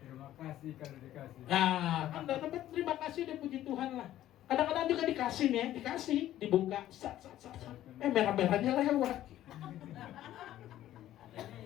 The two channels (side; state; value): right; quieter; 13.1 dB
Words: Terima kasih kalau dikasih. Nah, kan dapat terima kasih deh, puji Tuhan lah. Kadang-kadang juga dikasih nih, dikasih, dibuka, sat. Merah-merahnya lewat.